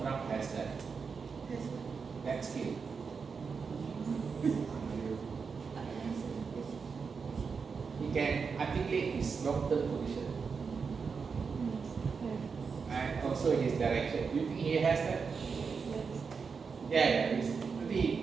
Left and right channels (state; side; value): quieter; left; 5.4 dB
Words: Trump has that skill? He can articulate his long-term position and also his direction. Do you think he has that? Yeah, it's